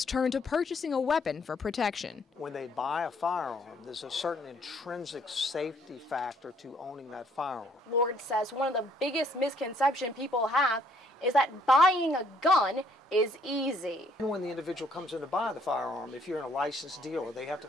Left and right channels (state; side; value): normal; both; correlation 0.65